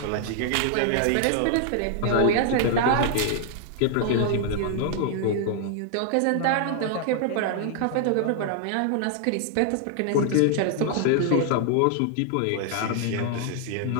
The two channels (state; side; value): different; both; correlation 0.00